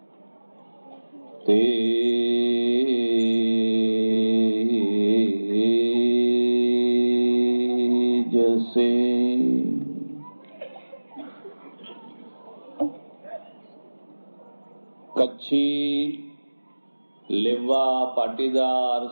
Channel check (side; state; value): both; inverted; correlation -1.00